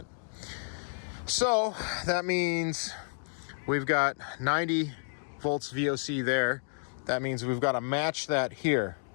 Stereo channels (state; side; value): silent; right; digital silence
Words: So that means we've got 90 volts VOC there. That means we've got to match that here.